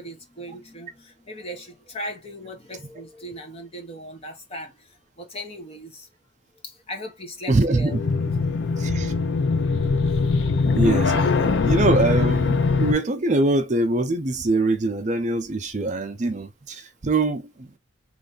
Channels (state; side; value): normal; both; correlation 0.57